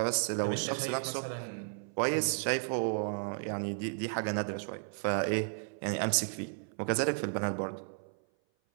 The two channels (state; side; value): silent; left; 55 dB below the other